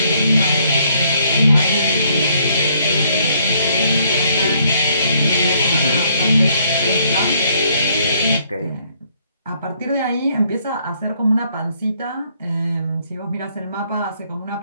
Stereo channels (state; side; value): inverted; both; correlation -0.67